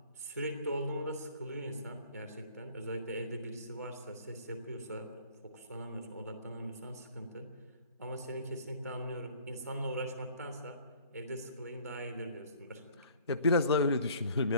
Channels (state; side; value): inverted; both; correlation -0.53